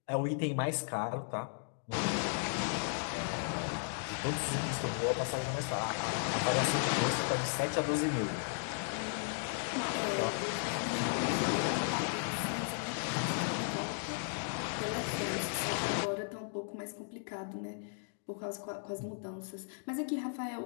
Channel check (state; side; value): silent; right; digital silence